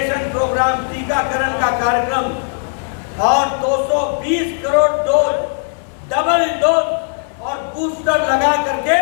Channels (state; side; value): silent; right; 60 dB below the other